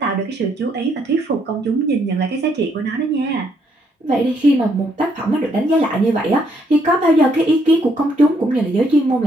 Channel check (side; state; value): both; normal; correlation 0.71